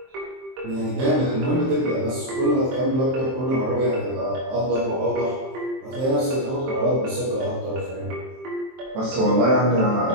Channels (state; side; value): late; left; 23 ms